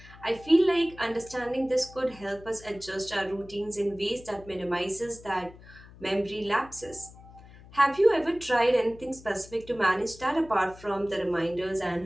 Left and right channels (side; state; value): left; noise; hum, 20 dB below the sound